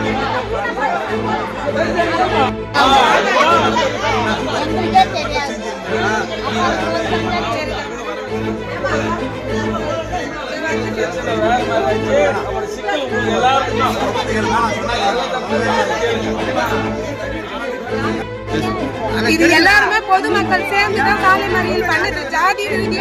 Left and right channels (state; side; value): identical; both; correlation 1.00